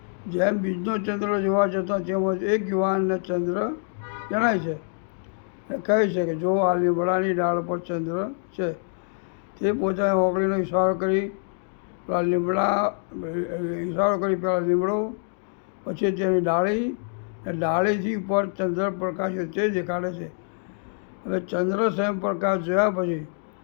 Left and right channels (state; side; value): silent; right; 58 dB below the other